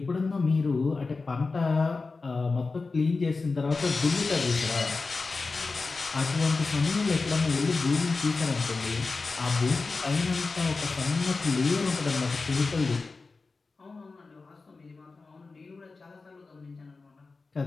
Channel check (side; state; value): right; quieter; 4.0 dB